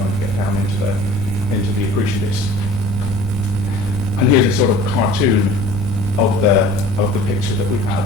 to get down into the accretion disk. And here's a sort of cartoon of the picture that we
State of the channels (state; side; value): noise; left; rumble, 12 dB below the sound